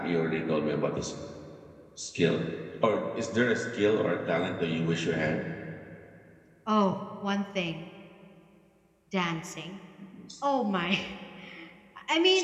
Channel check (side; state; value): both; identical; correlation 1.00